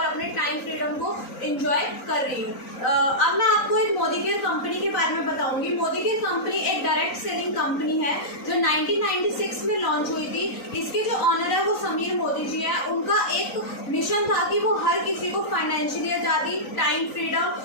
अपने टाइम फ्रीडम को इंजॉय कर रही हूँ। अब मैं आपको एक मोदी केयर कंपनी के बारे में बताऊंगी। मोदी केयर कंपनी एक डायरेक्ट सेलिंग कंपनी है जो 1996 में लॉन्च हुई थी। इसके जो ऑनर है वो समीर मोदी जी है। उनका एक मिशन था कि वो हर किसी को फाइनेंशियली आज़ादी, टाइम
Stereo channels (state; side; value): late; right; 3.9 ms